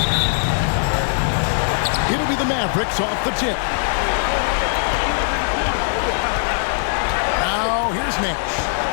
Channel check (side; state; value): right; silent; digital silence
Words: It'll be the Mavericks off the tip. Now, here's Nash.